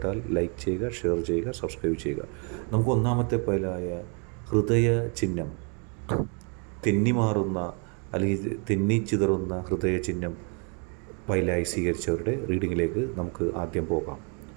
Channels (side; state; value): left; quieter; 36.9 dB